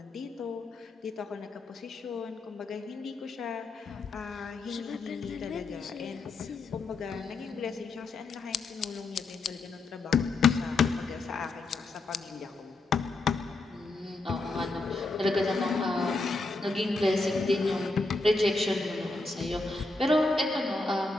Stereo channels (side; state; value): right; quieter; 3.2 dB